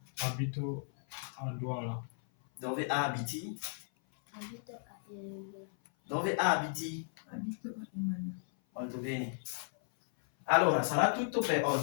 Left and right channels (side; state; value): right; silent; 54 dB below the other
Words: Abito a Douala. Dove abiti? Abito a Eligo. Dove abiti? Abito a Imana. Molto bene. Allora, sarà tutto per